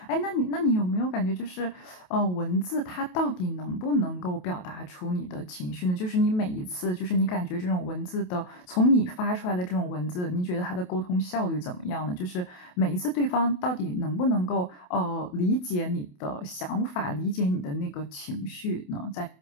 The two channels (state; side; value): late; right; 28 ms